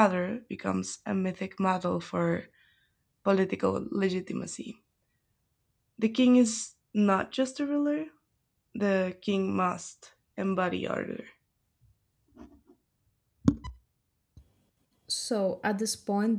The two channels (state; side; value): identical; both; correlation 1.00